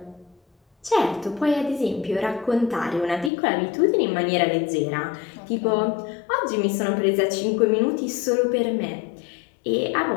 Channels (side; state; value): right; drops out; at 3.3 s